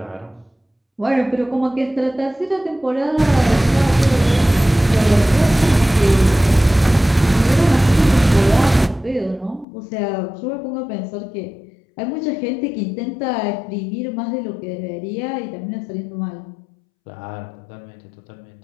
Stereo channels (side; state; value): right; drops out; at 9.7 s